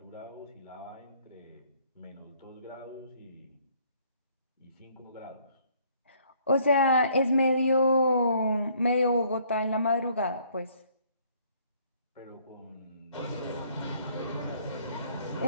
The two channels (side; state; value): both; inverted; correlation -0.62